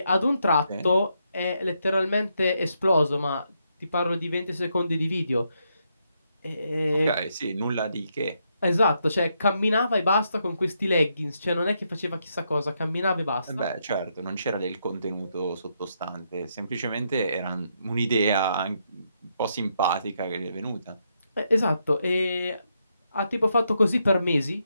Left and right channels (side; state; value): both; inverted; correlation -0.79